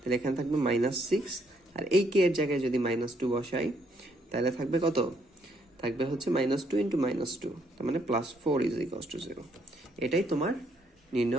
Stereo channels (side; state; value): both; normal; correlation 0.71